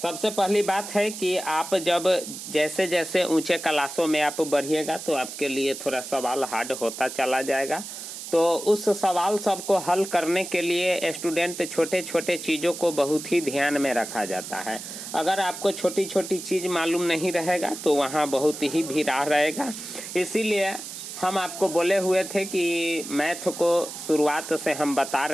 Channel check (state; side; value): noise; right; hiss, 10 dB below the sound